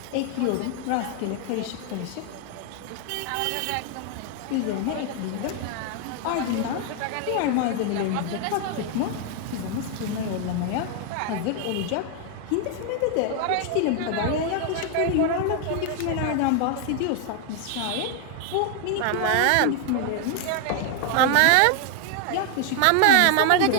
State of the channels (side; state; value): both; different; correlation 0.00